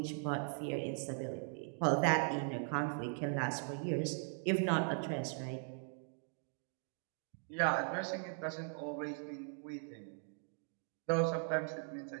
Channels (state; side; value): silent; left; 51 dB below the other